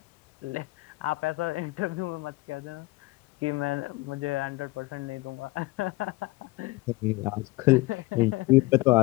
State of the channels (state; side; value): quieter; right; 21.8 dB